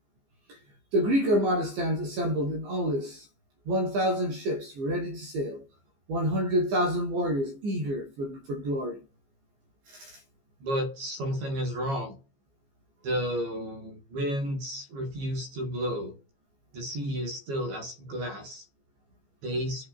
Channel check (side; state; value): left; late; 15 ms